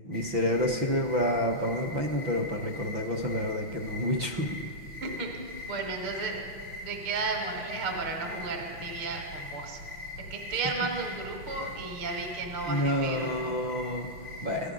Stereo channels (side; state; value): left; late; 5.9 ms